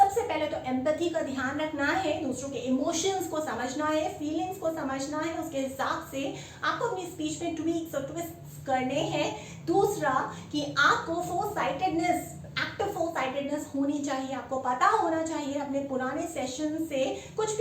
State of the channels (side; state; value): both; identical; correlation 1.00